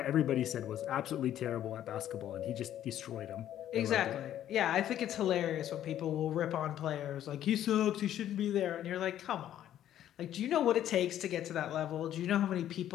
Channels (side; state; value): right; quieter; 11.5 dB